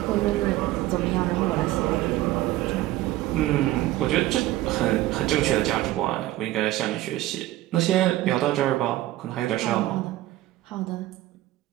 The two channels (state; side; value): quieter; left; 15.9 dB